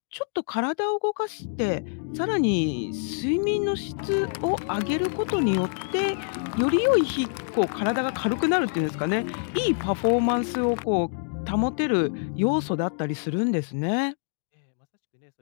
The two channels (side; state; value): right; silent; digital silence